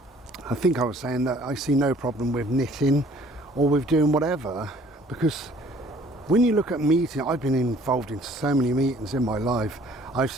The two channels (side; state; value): both; normal; correlation 0.56